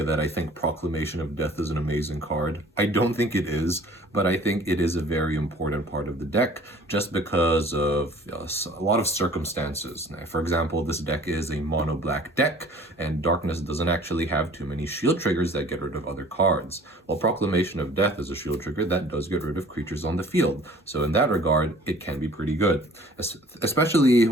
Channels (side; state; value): both; normal; correlation 0.50